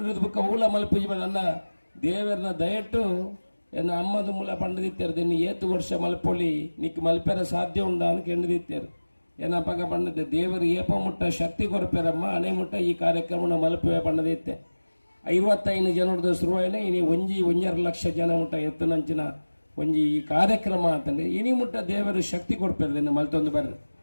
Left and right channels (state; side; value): inverted; both; correlation -1.00